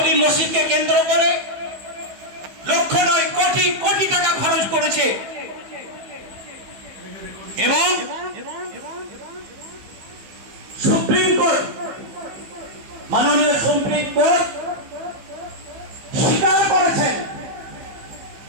মসজিদকে কেন্দ্র করে লক্ষ নয় কোটি কোটি টাকা খরচ করেছে এবং সুপ্রিম কোর্ট, মাননীয় সুপ্রিম কোর্ট স্বীকার করেছেন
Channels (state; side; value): late; left; 15 ms